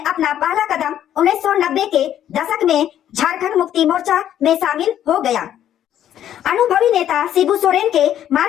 पहला कदम 1990 के दशक में झारखंड मुक्ति मोर्चा में शामिल हो गया। अनुभवी नेता शिबू सोरेन के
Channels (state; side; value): quieter; right; 10.9 dB